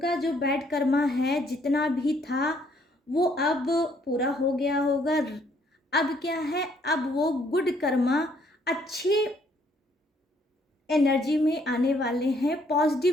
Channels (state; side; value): normal; both; correlation 0.66